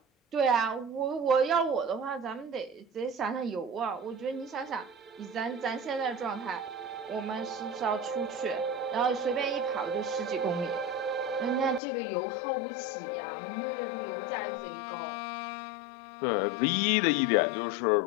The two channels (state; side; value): drops out; right; at 11.8 s